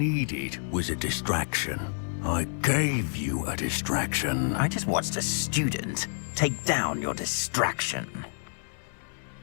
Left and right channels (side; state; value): right; silent; digital silence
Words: was a distraction. I gave you a distraction. I just watched a student take down your distraction.